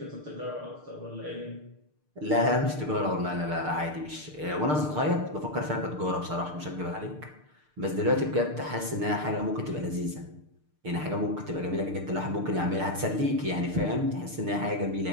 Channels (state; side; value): late; left; 6.6 ms